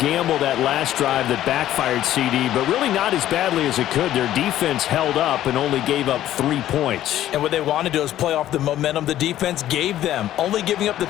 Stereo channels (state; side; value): quieter; right; 12.8 dB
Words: that last drive that backfired, CD, but really not as badly as it could. Their defense held up and only gave up 3 points. And what they want to do is play off the momentum the defense gave them. Only giving up the